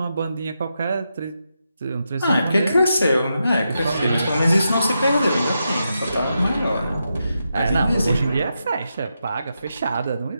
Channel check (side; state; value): both; inverted; correlation -0.86